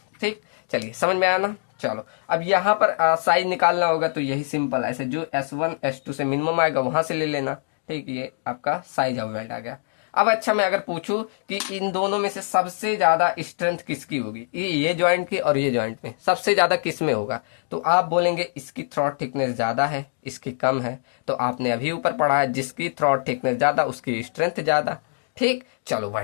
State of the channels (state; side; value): silent; right; digital silence